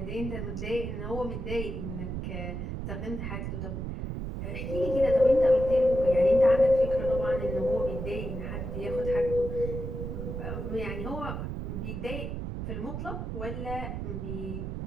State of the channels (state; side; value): noise; right; rumble, 5 dB below the sound